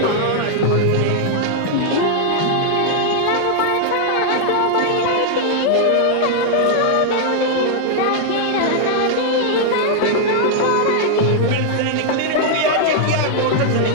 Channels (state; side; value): different; both; correlation -0.01